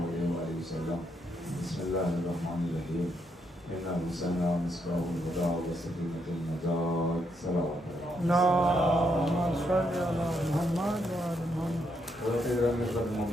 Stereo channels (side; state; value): both; normal; correlation 0.77